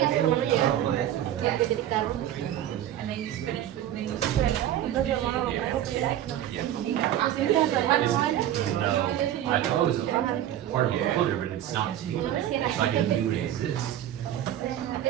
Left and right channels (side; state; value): left; quieter; 11.8 dB